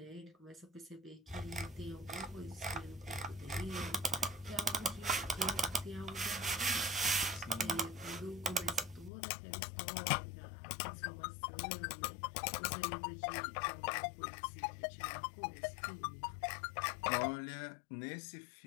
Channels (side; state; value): right; drops out; at 9.1 s